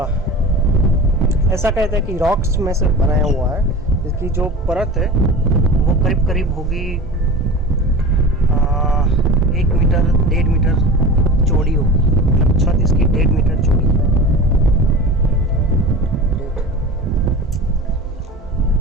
ऐसा कहते हैं कि रॉक्स में से बनाया हुआ है। इसकी जो परत है वो करीब करीब होगी 1 मीटर 1.5 मीटर चौड़ी होगी। मतलब छत इसकी 1.5 मीटर चौड़ी है।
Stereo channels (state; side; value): normal; both; correlation 0.34